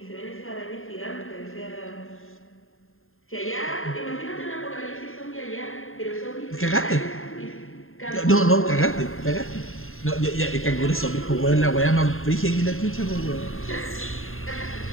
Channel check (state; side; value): late; right; 0.61 ms